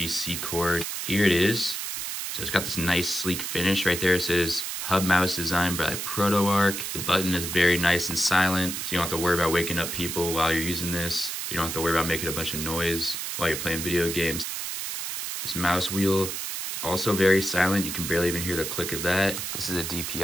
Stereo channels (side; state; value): right; noise; hiss, 4 dB below the sound